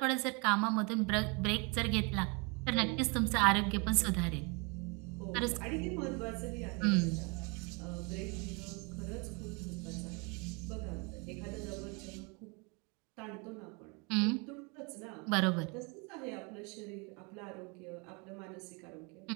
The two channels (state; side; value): quieter; left; 31.2 dB